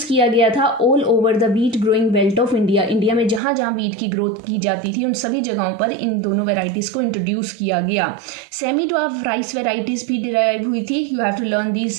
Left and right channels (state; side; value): drops out; left; at 3.4 s